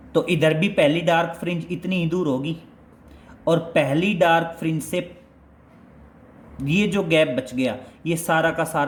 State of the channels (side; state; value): both; identical; correlation 1.00